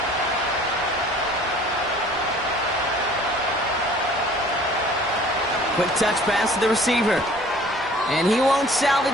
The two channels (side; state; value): both; normal; correlation 0.51